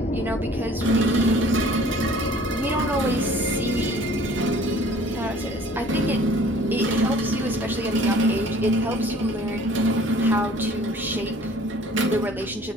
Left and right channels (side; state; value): both; normal; correlation 0.52